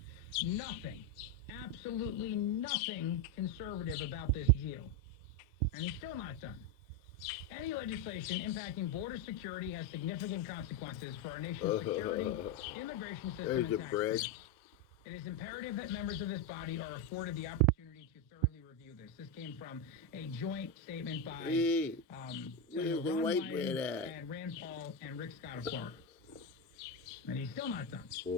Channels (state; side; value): normal; both; correlation 0.09